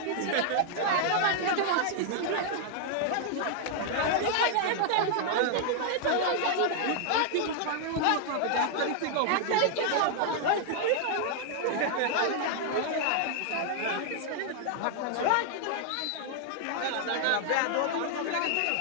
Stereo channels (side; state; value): both; different; correlation 0.00